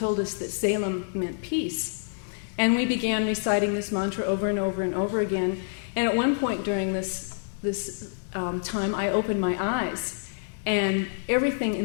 us that Salem meant peace. And we began reciting this mantra over and over and over again. And at one point during this time, I opened my eyes, and everything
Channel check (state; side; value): silent; right; digital silence